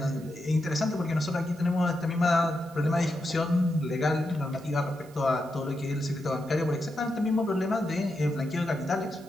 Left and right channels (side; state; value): right; noise; hiss, 25 dB below the sound